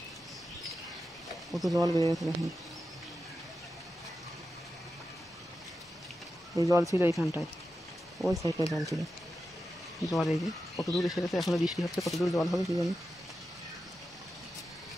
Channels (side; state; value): both; normal; correlation 0.90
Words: কত জল বেড়ে গেছে দেখুন। ওই জল ছিল এইখানটায়, ওই সাইডটায় জল ছিল। জল এই যে কত দূর এসে গেছে, এখনো বৃষ্টি হচ্ছে, কত দূর জল হবে কি জানি।